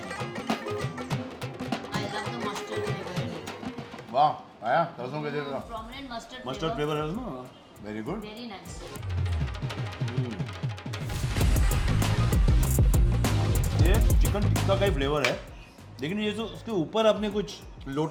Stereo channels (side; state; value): both; identical; correlation 1.00